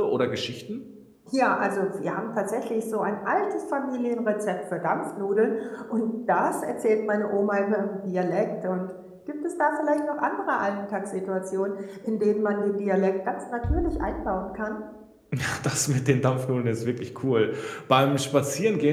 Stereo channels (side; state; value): both; identical; correlation 1.00